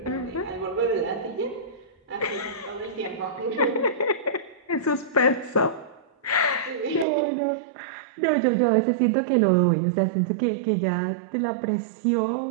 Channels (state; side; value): drops out; left; at 7.1 s